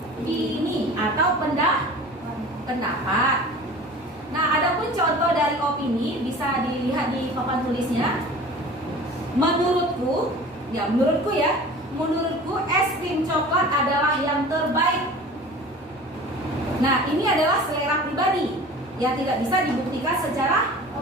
atau pendapat. Nah, adapun contoh dari opini bisa dilihat di papan tulisnya. Menurutku es krim coklat adalah yang terbaik. Nah, ini adalah selera pribadi yang tidak bisa dibuktikan secara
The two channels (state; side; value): normal; both; correlation 0.41